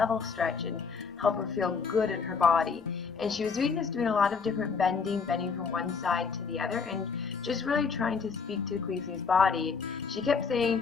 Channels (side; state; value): right; quieter; 5.4 dB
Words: stretch and help her feel good in her body. And she was doing a lot of different bending from one side to the other, and just really trying to speak to Khaleesi's body. She kept saying,